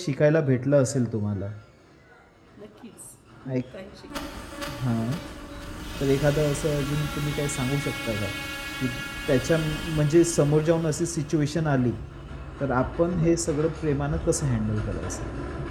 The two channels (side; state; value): both; identical; correlation 1.00